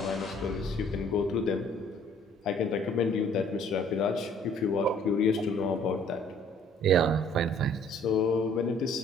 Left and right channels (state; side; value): normal; both; correlation 0.57